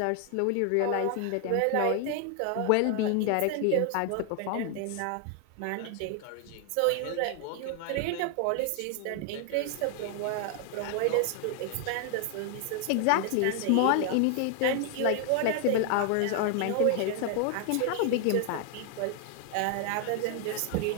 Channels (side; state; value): both; different; correlation 0.00